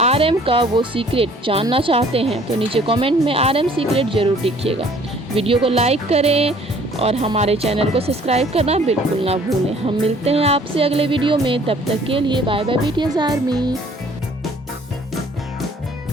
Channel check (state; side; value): normal; both; correlation 0.56